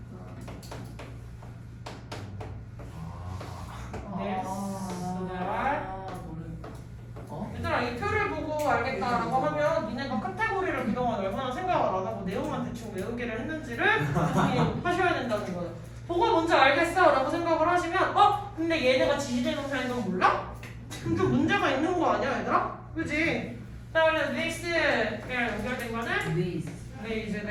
네. 어? 얘들아 이 표를 보고 알겠다라고 하면 니네가 카테고리를 그동안 얼마나 생각을 안 하고 내용만 대충 외우기를 했는지를 하셔야 된다는 거예요. 보고 먼저 알겠어 라고 생각을 하시면 근데 얘네가 지시대명사인 건 몰라? 그럼 좀 문제가 있는 거 아니야 얘들아? 그지? 자 그래서 this랑 연결된 거는 these,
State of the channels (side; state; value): both; identical; correlation 1.00